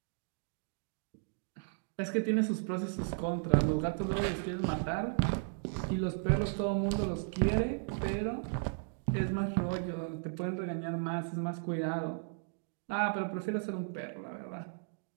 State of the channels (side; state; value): left; silent; digital silence